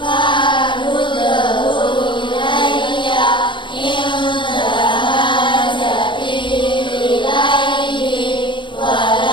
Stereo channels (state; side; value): late; right; 0.23 ms